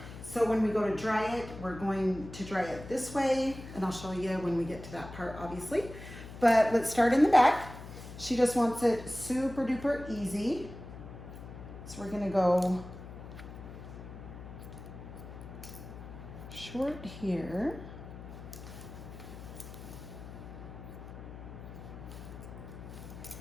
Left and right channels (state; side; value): noise; left; hum, 13 dB below the sound